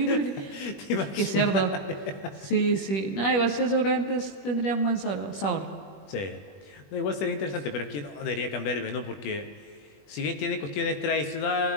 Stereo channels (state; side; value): late; right; 21 ms